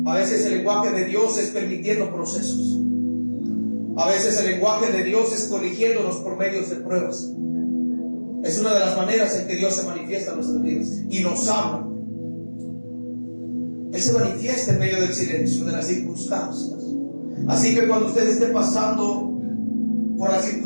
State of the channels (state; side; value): inverted; both; correlation -1.00